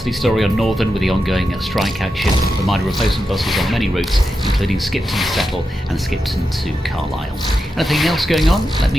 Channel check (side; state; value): both; normal; correlation 0.88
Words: story on Northern with the ongoing strike action. The minor replacement buses on many routes, including Skipton to Settle and Skipton to Carlisle. Anything else going on? Let